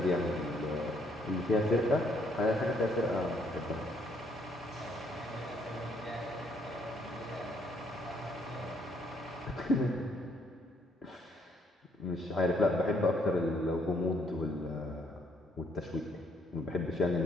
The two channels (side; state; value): both; normal; correlation 0.69